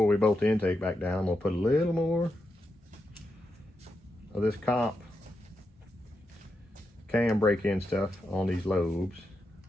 we bolt the intake back down, I'm gonna put a little more of this comp cam break-in stuff on these lobes.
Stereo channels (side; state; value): both; normal; correlation 0.86